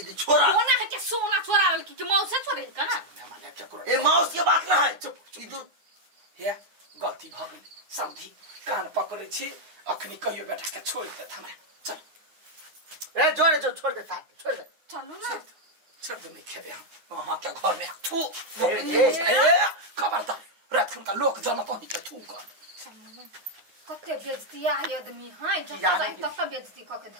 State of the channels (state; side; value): late; left; 9.6 ms